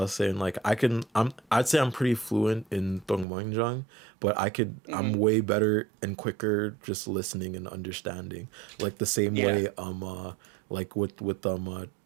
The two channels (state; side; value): drops out; left; at 3.2 s